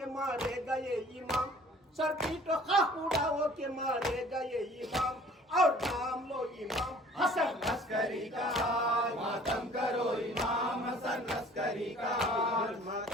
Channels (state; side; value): normal; both; correlation 0.51